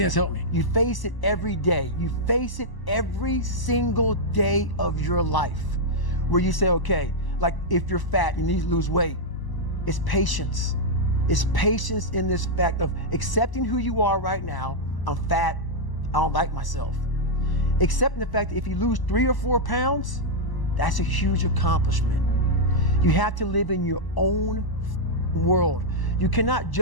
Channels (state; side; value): late; right; 1.0 ms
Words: that's helped me. You face it every day. You face it every single day of your life where you say, okay, like if you're fat, you need to lose weight. It's patience. It's patience in this fact of accepting who you are right now. I'm fat, I don't like myself. Accepting the fact that if you lose 3 or 4 pounds, that's a huge accomplishment. You have to live in your own world. You cannot